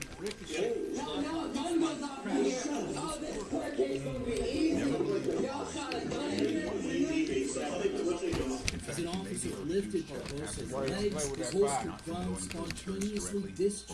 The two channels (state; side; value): identical; both; correlation 1.00